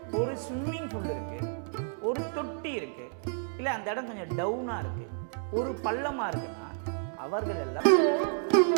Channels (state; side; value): silent; left; digital silence